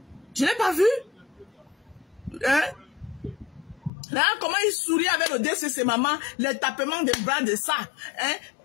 Je ne l'ai pas vu. Hein? Là, comment il sourit avec le DCC, maman, les tapements des bras de ça. Hein?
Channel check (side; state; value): right; drops out; at 3.9 s